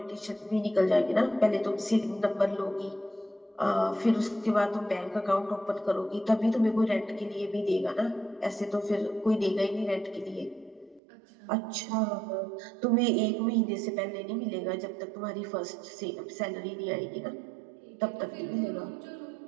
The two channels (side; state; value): left; drops out; at 11.0 s